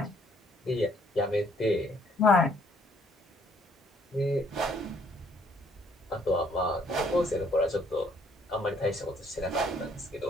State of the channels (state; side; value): normal; both; correlation 0.65